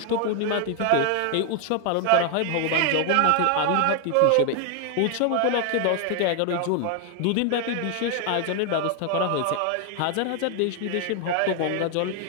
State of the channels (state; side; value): different; both; correlation 0.00